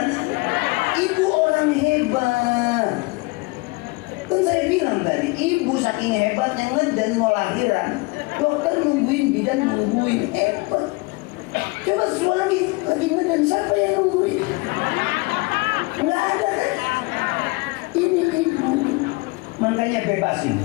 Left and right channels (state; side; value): quieter; right; 25.8 dB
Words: Ibu orang hebat. Kan saya bilang tadi, Ibu saking hebatnya ngedan mau lahiran, dokter nungguin, bidan nungguin, hebat. Coba suami lagi ngedan, siapa yang nungguin? Nggak ada kan? Ini Ibu. Makanya bebasin